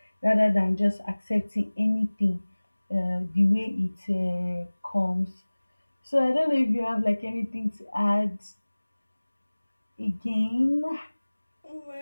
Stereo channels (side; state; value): both; inverted; correlation -1.00